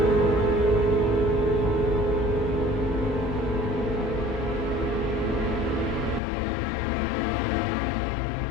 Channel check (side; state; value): right; drops out; at 6.2 s